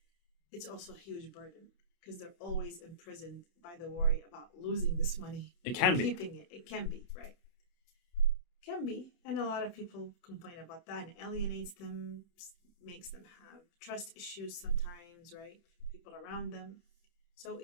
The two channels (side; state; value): right; late; 31 ms